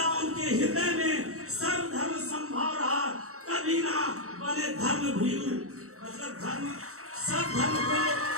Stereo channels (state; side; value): late; left; 0.64 ms